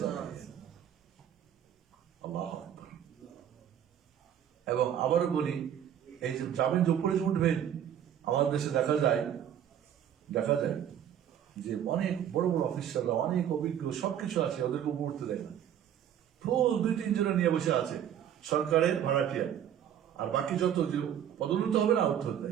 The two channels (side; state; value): left; quieter; 9.8 dB